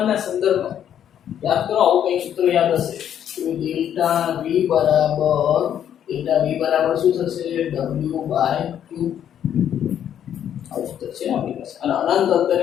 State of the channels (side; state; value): right; quieter; 9.8 dB